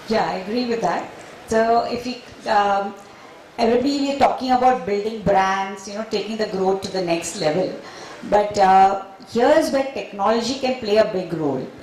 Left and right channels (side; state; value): both; identical; correlation 1.00